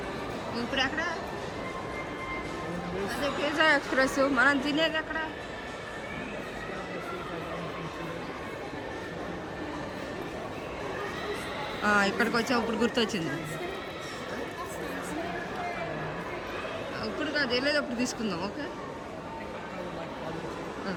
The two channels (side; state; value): both; identical; correlation 1.00